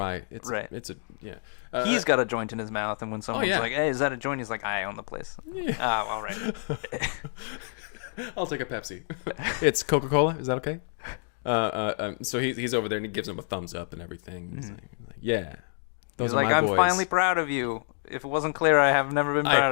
It's Right. Yeah. He's got a joint in his mouth, and when someone's yeah. like, "Hey, is that a joint?" He's like, "I own the place." Oh, all right. I'll take a Pepsi. It's Coca-Cola. Is that okay? So he's over there and he gives him a thumbs up and everything. He's like, yeah. He's those are like, my "I'm boys." finally proud of you. If it wasn't clear, I have never been proud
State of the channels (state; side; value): silent; right; digital silence